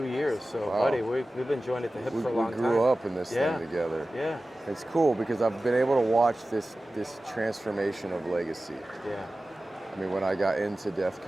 years. So, Wow. buddy, we've been joined at the hip for a long We time. grew up in this Yeah. thing together. Yeah. It's cool because I've been able to watch this transformation of legacy. Yeah. I mean, when I got into death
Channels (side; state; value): both; normal; correlation 0.96